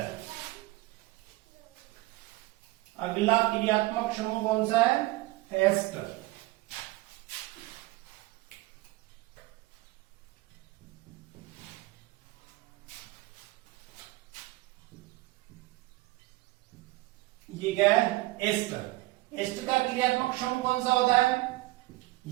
अगला क्रियात्मक समूह कौन सा है, एस्टर। ये क्या है, एस्टर। एस्टर का क्रियात्मक समूह कौन सा होता है,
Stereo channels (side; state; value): left; quieter; 19.8 dB